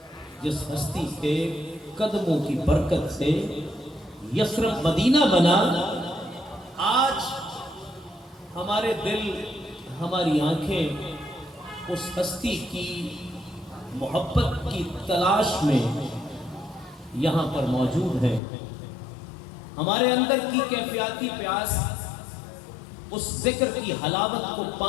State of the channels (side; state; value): right; drops out; at 18.4 s